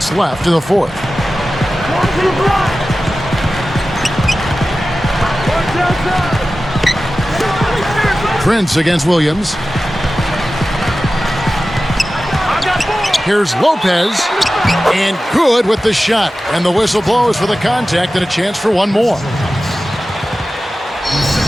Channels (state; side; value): normal; both; correlation 0.95